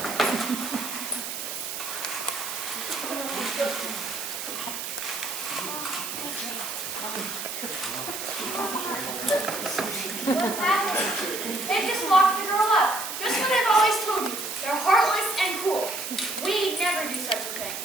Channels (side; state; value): right; noise; hiss, 6 dB below the sound